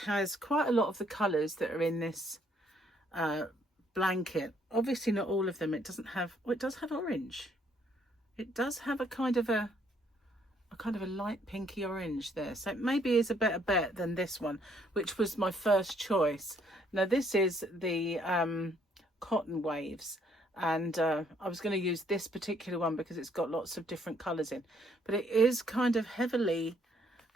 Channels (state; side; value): normal; both; correlation 0.67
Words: has quite a lot of the colours that are in this blanket. Obviously not all of them. It doesn't have, well, it does have orange. It does have a kind of a light pinky orange there, so it maybe is a better bet than this one, which was my first choice. Now this is the cotton waves, and I was going to use this particular one because it's got lots of different colors in, but it is kind of heavily